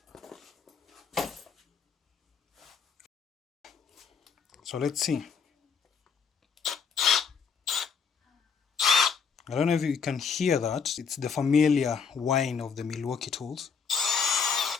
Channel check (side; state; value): right; quieter; 6.0 dB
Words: So let's see. I don't know if you can hear that. It's the familiar whine of the Milwaukee tools.